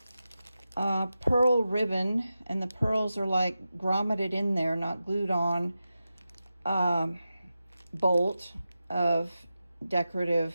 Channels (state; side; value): inverted; both; correlation -0.92